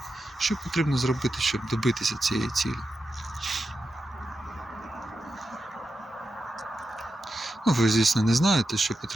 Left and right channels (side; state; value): both; normal; correlation 0.89